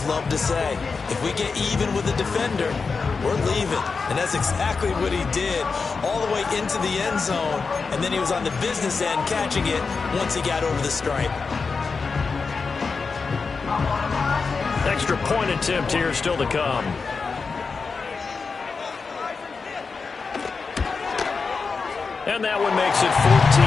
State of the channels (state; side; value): quieter; right; 4.8 dB